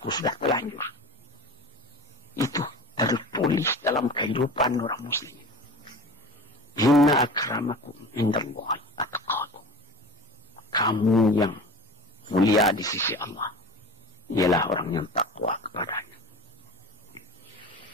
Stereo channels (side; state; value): both; normal; correlation 0.35